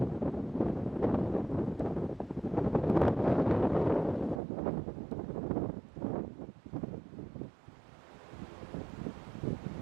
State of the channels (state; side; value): drops out; left; at 4.4 s